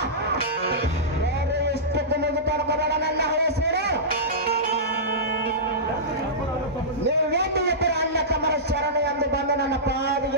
ಬೇರೆ ಇಷ್ಟಕ್ಕೆ ಮುಗಿತಡ್ಕೋಬೇಡ ನನ್ನ ಹೆಸರು. ನೀವೇನು ಇಬ್ಬರ ಅಣ್ಣ ತಮ್ಮರ ಶರಣ ಎಂದು ಬಂದು ನನ್ನ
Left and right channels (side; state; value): both; normal; correlation -0.16